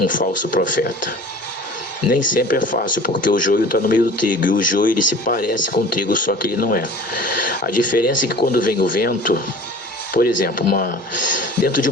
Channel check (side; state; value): both; normal; correlation 0.43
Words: falso profeta. Nem sempre é fácil, porque o joio está no meio do trigo, e o joio ele se parece com o trigo, só que ele não é. A diferença é que quando vem o vento, por exemplo, dentro de